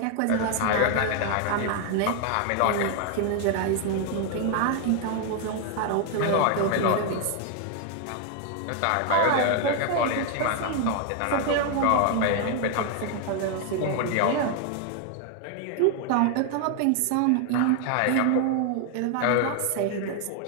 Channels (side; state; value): both; different; correlation 0.00